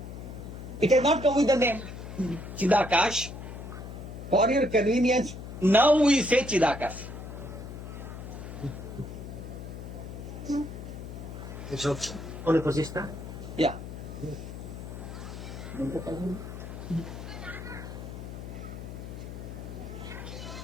It has not come with the name Chidakash. For your convenience, now we say Chidakash. So, on the position. Yeah.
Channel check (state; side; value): noise; left; hum, 10 dB below the sound